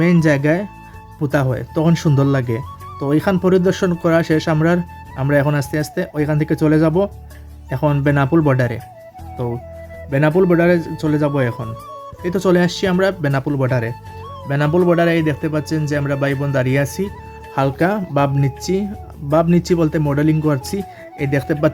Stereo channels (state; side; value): identical; both; correlation 1.00